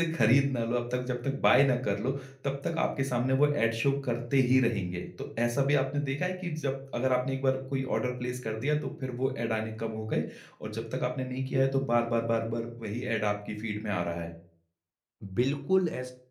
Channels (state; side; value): identical; both; correlation 1.00